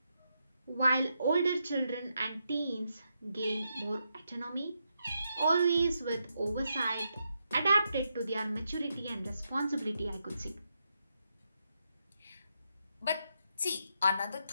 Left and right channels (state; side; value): inverted; both; correlation -0.83